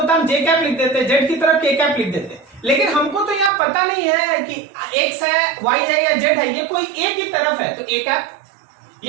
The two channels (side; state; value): left; drops out; at 3.5 s